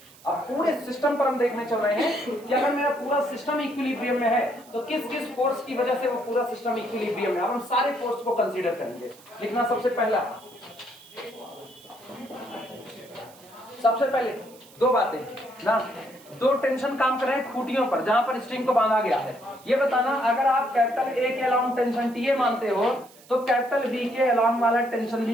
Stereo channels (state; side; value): noise; right; hiss, 24 dB below the sound